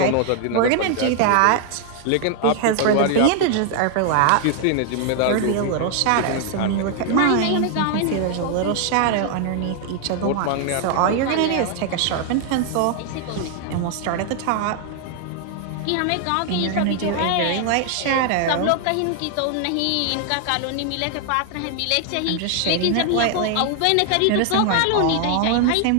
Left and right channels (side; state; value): both; different; correlation 0.00